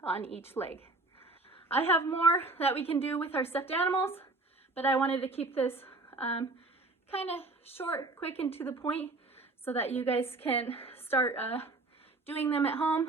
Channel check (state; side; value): quieter; left; 3.1 dB